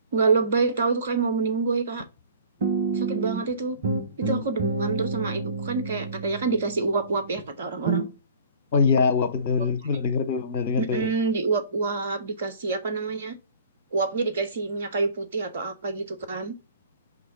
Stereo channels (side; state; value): both; inverted; correlation -0.48